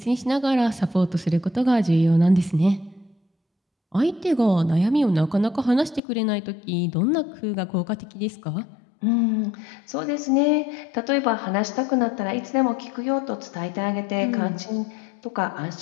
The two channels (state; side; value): drops out; right; at 6.0 s